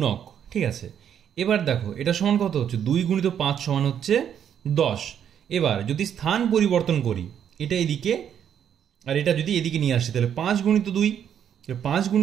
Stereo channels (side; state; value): left; quieter; 9.0 dB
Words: ঠিক আছে। এবার দেখো, এটা সমান কত হচ্ছে? 2 গুণিত 5 সমান হচ্ছে 10। এবার যদি স্থান পরিবর্তন করি, এটা এদিকে আর এটা যদি এদিকে নিয়ে আসি, তাহলে 5 গুণিত 2, 5